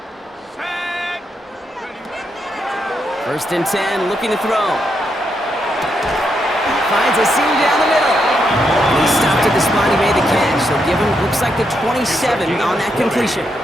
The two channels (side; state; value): both; normal; correlation 0.80